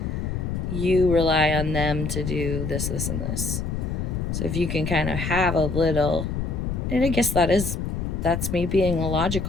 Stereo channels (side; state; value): left; noise; rumble, 2 dB below the sound